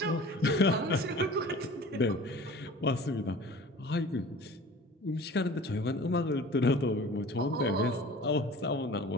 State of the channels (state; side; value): normal; both; correlation 0.42